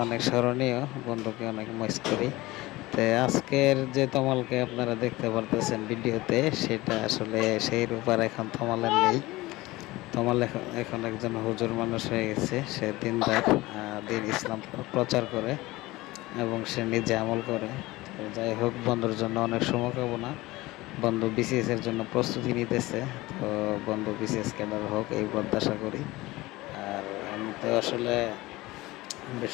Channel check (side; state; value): right; quieter; 19.7 dB